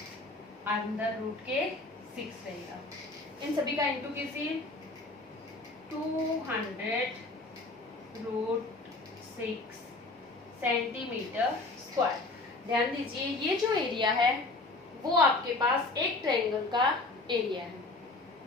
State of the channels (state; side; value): quieter; right; 3.2 dB